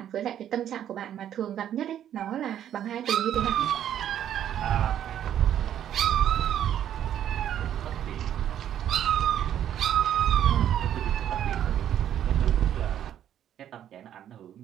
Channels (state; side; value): quieter; left; 10.5 dB